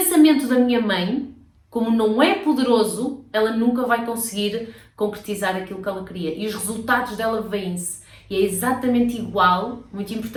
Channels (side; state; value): both; identical; correlation 1.00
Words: da minha mãe, como não é poderoso, ela nunca vai conseguir concretizar aquilo que ela queria. E os resultados dela vêm-se. E é exatamente igual, muito